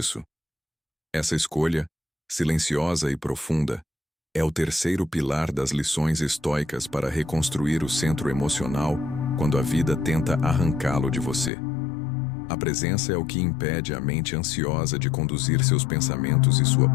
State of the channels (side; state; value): right; drops out; at 11.5 s